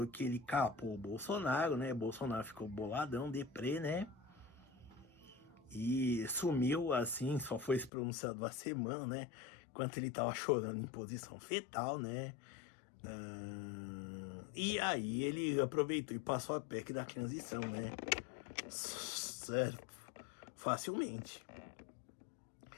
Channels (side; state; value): right; drops out; at 7.9 s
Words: que ele capou o Bolsonaro, né? Bolsonaro ficou boladão, deprê, né? E sumiu assim, só foi se pronunciado uma semana, né? Enquanto ele tava chorando em posição fetal, né? E aí ele aproveitou e passou a PEC da transição, né? Certo? Facilmente.